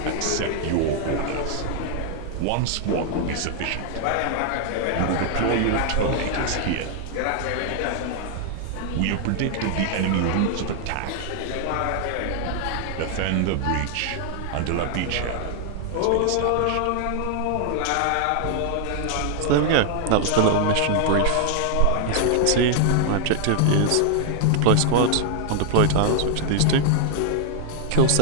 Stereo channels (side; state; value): both; different; correlation 0.00